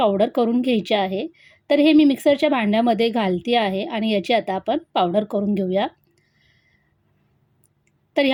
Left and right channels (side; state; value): both; identical; correlation 1.00